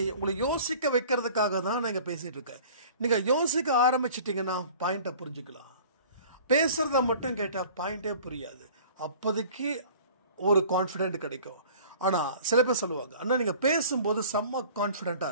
உங்களை யோசிக்க வைக்கிறதுக்காக தான் நான் இங்கே பேசிகிட்டு இருக்கேன். நீங்கள் யோசிக்க ஆரம்பிச்சிட்டிங்கன்னா பாயிண்ட்டை புரிஞ்சுக்கலாம். பேசுகிறத மட்டும் கேட்டால் பாயிண்ட்டே புரியாது. அப்போதைக்கு ஒரு கான்ஃபிடென்ட் கிடைக்கும். ஆனால் சில பேர் சொல்லுவாங்க, அண்ணா நீங்கள் பேசும்போது செம்ம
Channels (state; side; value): inverted; both; correlation -0.46